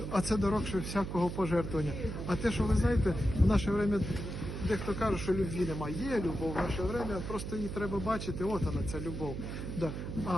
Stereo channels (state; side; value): noise; right; hum, 6 dB below the sound